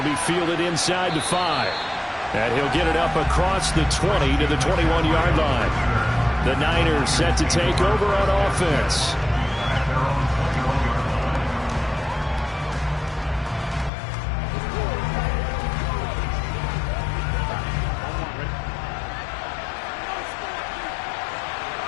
be fielded inside the 5. And he'll get it up across the 20 to the 21-yard line. The Niners set to take over on offense.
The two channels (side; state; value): right; drops out; at 13.9 s